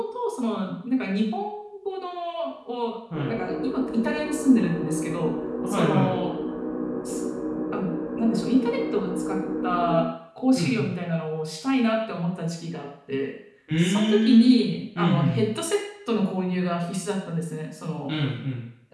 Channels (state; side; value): identical; both; correlation 1.00